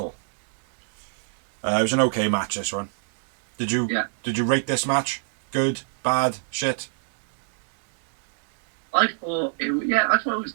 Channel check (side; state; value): left; silent; digital silence